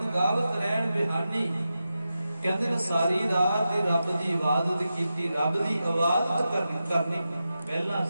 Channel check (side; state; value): both; inverted; correlation -0.91